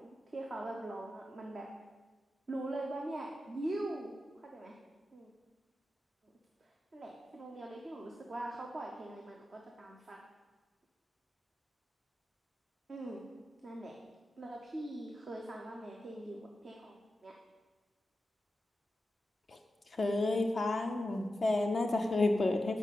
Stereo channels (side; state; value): both; normal; correlation 0.92